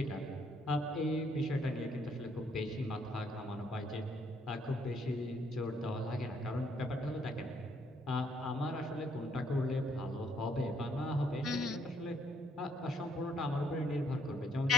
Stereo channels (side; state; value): both; normal; correlation 0.68